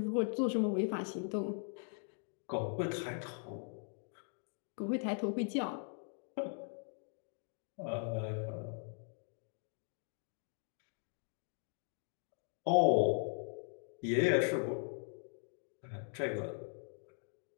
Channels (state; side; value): silent; right; 51 dB below the other